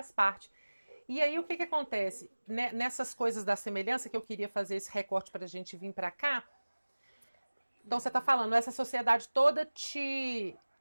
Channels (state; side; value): inverted; both; correlation -1.00